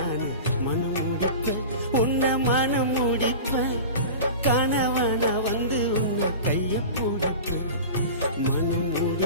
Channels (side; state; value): both; inverted; correlation -0.33